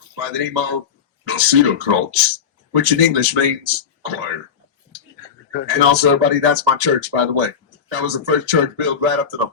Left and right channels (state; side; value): quieter; right; 7.1 dB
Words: by the name of Kreuz, which in English means choir. And also, everybody, that's my church, by the way. That was the first church built right up to the